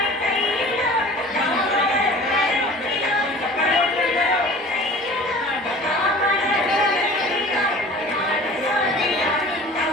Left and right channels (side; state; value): both; normal; correlation 0.43